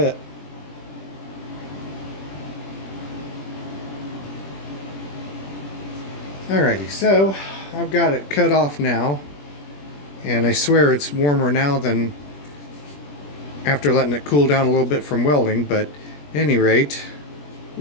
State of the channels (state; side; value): late; right; 21 ms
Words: Alrighty, so I've got it cut off now, and I swear it's warmer now than after letting it cool down a little bit from welding, but at any rate,